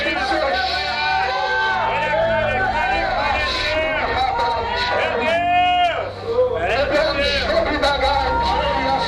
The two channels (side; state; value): both; identical; correlation 1.00